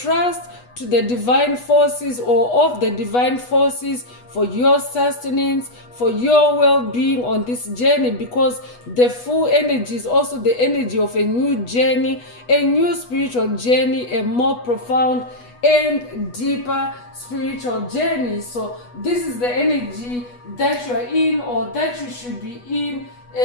to the divine forces, or of the divine forces, for your sustenance, for your well-being on this journey, because the full energy is also the energy of a new journey, a new spiritual journey, a more profound and deeper spiritual journey. So this is the energy that you are in, or that you should be in.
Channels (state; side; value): late; right; 8.2 ms